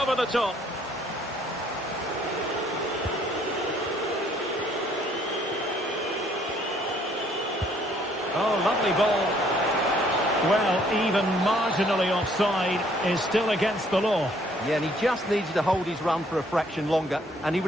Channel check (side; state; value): both; normal; correlation 0.63